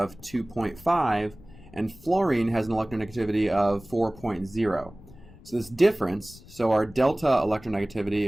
2.5 and fluorine has an electronegativity of 4.0. So this difference, so our delta electronegativity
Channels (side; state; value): left; noise; rumble, 21 dB below the sound